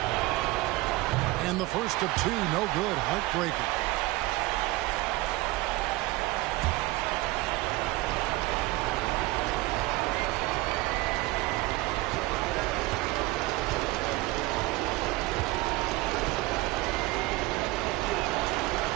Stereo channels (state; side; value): quieter; left; 20.1 dB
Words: And the first of 2, no good. Heartbreaker.